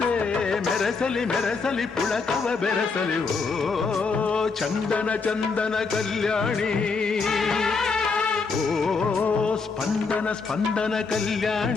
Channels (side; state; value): right; quieter; 4.6 dB